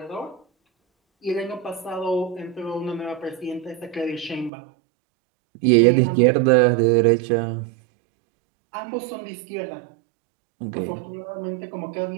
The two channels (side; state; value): left; drops out; at 4.5 s